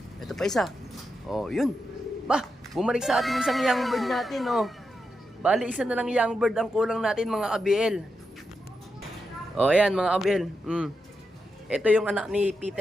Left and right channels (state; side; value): normal; both; correlation 0.86